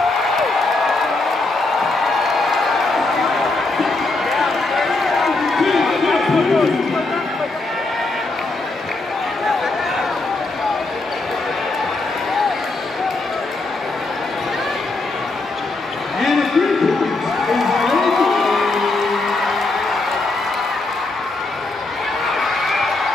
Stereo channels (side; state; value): right; quieter; 3.3 dB